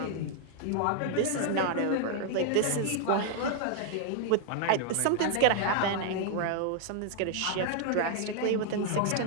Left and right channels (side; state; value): both; different; correlation 0.00